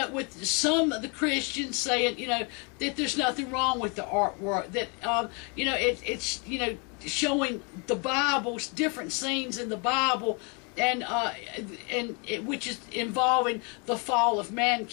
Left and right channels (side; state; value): right; quieter; 33.7 dB